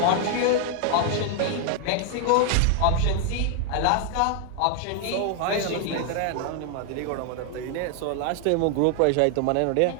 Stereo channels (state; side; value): different; both; correlation 0.00